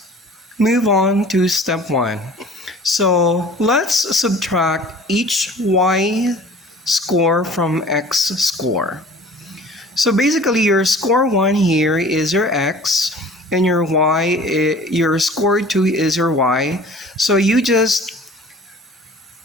move on to step 1. So let's subtract each y score from x score. So basically your score 1 here is your x and your your score 2 is your y. So you just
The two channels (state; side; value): normal; both; correlation 0.46